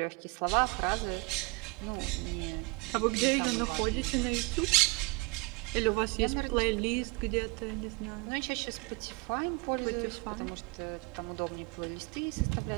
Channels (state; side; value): quieter; left; 28.1 dB